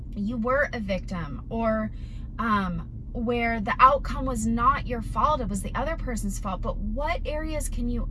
you were a victim, or where the outcome was not your fault, it was the other person's fault. But what areas can you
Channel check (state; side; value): identical; both; correlation 1.00